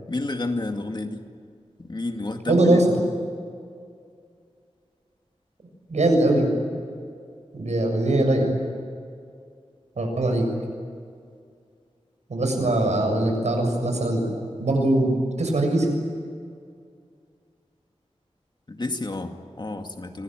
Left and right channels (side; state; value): both; normal; correlation 0.78